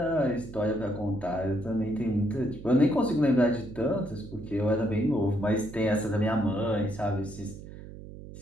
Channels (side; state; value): right; noise; hum, 14 dB below the sound